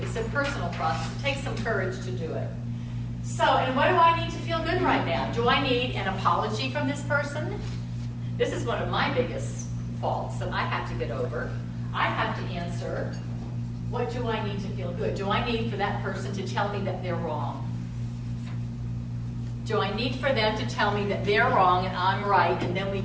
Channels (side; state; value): both; identical; correlation 1.00